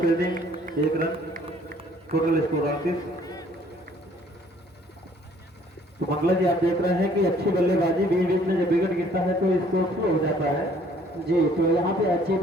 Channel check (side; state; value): both; normal; correlation 0.59